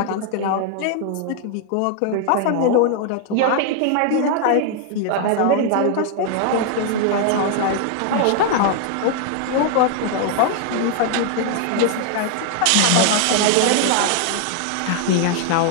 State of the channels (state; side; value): different; both; correlation 0.00